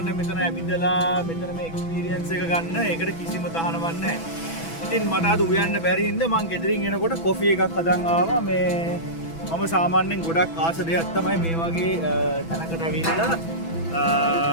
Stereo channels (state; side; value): late; right; 6.1 ms